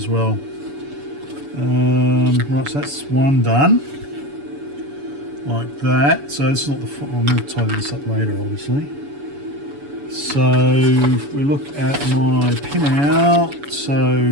well. Right, so that's one done. Like that. So this is not the. I'm going to tidy this up later, obviously. So if we look at my pin out,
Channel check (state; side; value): late; left; 7.0 ms